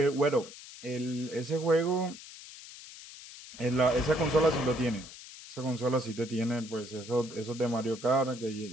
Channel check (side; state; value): left; noise; hiss, 15 dB below the sound